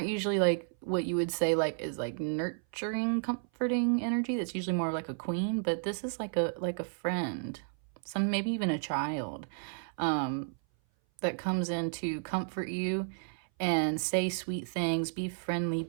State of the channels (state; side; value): silent; left; 56 dB below the other